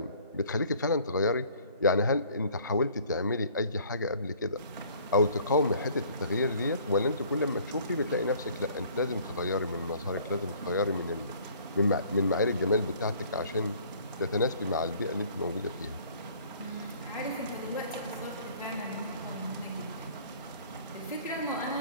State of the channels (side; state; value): both; inverted; correlation -0.55